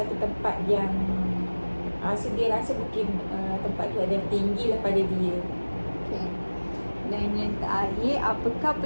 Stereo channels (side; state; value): both; inverted; correlation -1.00